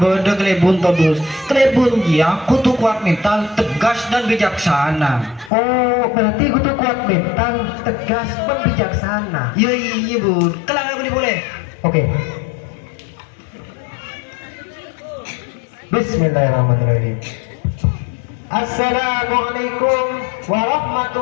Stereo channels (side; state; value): right; drops out; at 5.5 s